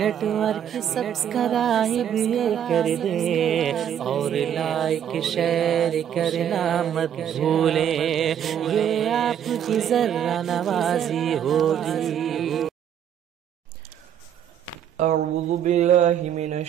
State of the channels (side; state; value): left; quieter; 9.4 dB